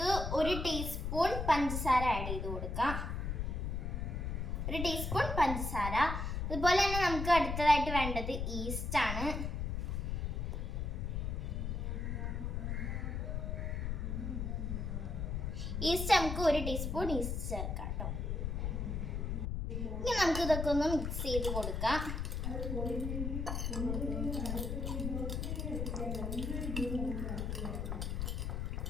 1 ടീസ്പൂൺ പഞ്ചസാര ആഡ് ചെയ്ത് കൊടുക്കാം. 1 ടീസ്പൂൺ പഞ്ചസാര. അതുപോലെ തന്നെ നമുക്ക് അടുത്തതായിട്ട് വേണ്ടത് ഈസ്റ്റ് ആണ്. ഈസ്റ്റ് നമുക്ക് 1 ടീസ്പൂൺ ഈസ്റ്റ് ചേർക്കാം കേട്ടോ. ഇനി നമുക്ക് ഇതൊക്കെ ഒന്ന് മിക്സ് ചെയ്ത് കൊടുക്കാം.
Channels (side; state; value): left; noise; rumble, 2 dB below the sound